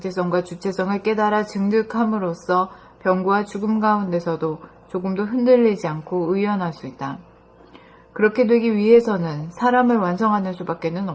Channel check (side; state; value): both; identical; correlation 1.00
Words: 주체성을 깨달아 증득함으로써 병고와 죽음 가운데서도 조금도 흔들리지 않고 의연할 수 있다. 그렇게 되기 위해서는 사람을 완성하는 수밖에는